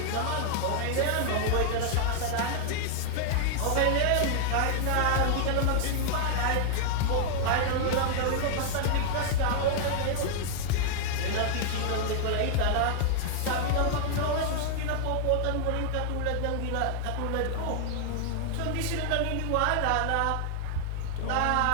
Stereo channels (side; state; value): both; different; correlation 0.00